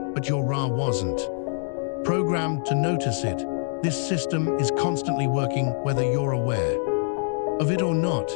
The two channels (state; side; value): silent; right; digital silence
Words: but your RA wasn't programmed to notice it. This system is constantly working whether you're aware of it or not.